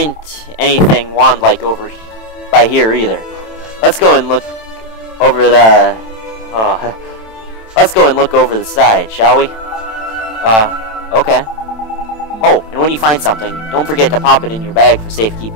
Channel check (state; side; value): late; right; 27 ms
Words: anything wand-like over by here either. Let's go and look over the... let's go and look over the side, shall we? Okay. Oh, and when you find something, don't forget to pop it in your bag for